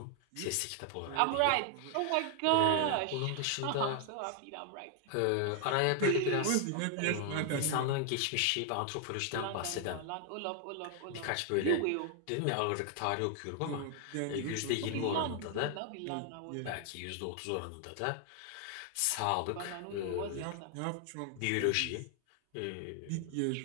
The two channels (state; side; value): different; both; correlation 0.00